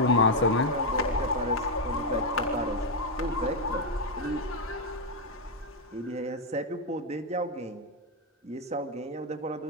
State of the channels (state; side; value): normal; both; correlation 0.01